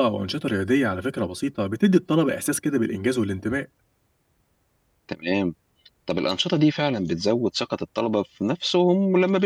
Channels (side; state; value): both; identical; correlation 1.00